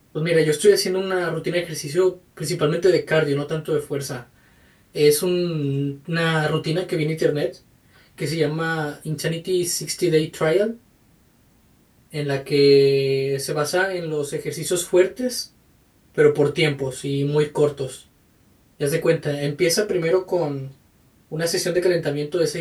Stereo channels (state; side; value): identical; both; correlation 1.00